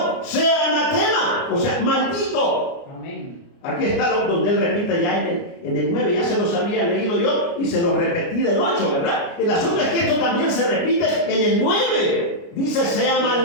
sea anatema, o sea, maldito. Amén. Aquí está donde él repite ya en el 9, ya se los había leído yo y se los repetí del 8, ¿verdad? El asunto es que esto también se repite en el 9, dice sea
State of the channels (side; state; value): right; late; 29 ms